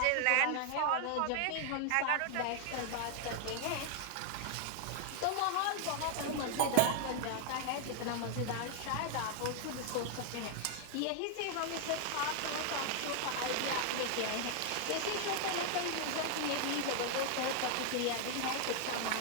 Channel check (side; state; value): both; different; correlation 0.00